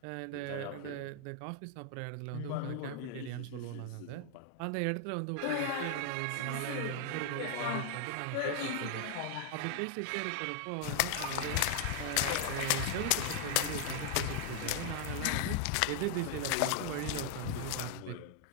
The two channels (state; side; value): different; both; correlation 0.00